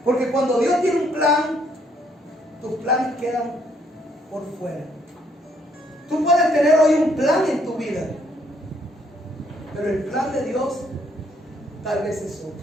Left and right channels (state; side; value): normal; both; correlation 0.68